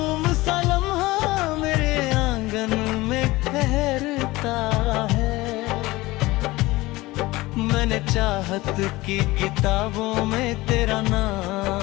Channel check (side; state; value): right; quieter; 19.9 dB